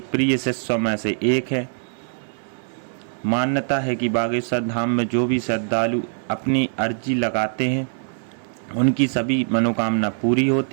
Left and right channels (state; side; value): silent; left; 60 dB below the other